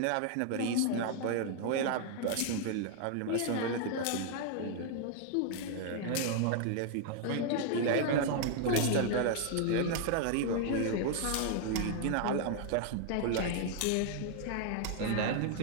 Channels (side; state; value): both; different; correlation 0.00